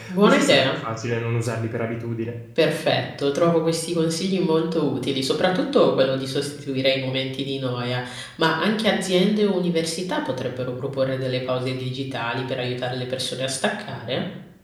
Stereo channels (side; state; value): both; identical; correlation 1.00